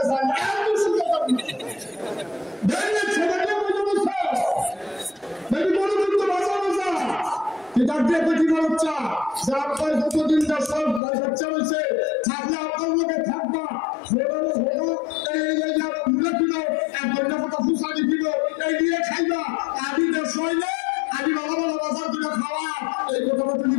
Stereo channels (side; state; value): right; drops out; at 11.0 s